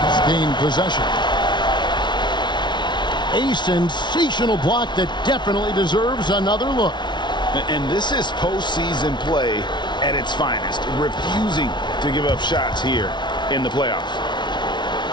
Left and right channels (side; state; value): right; late; 0.22 ms